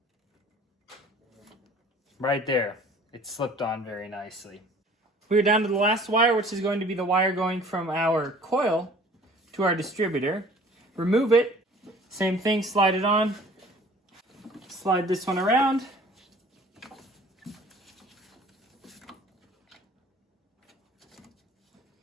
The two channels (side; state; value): both; normal; correlation 0.50